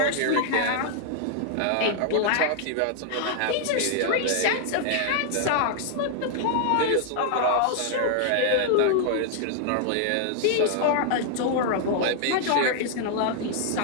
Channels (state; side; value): different; both; correlation -0.01